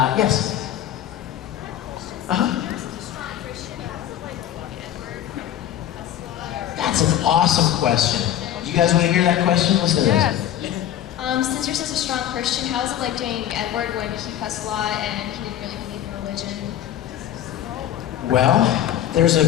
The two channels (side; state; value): right; quieter; 11.3 dB